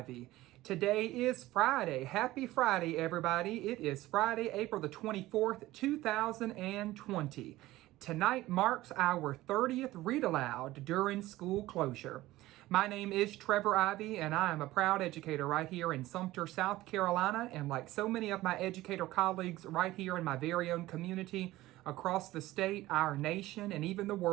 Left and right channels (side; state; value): left; quieter; 17.1 dB